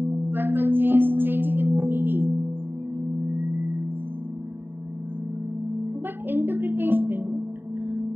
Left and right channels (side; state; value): left; late; 0.098 ms